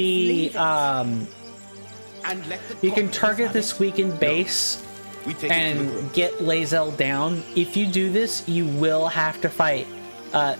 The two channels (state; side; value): inverted; both; correlation -1.00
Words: it. And let the you can goblins target have this it. weakened base We take it to the and group. get Lae'zel down. If you do this, you will have to fight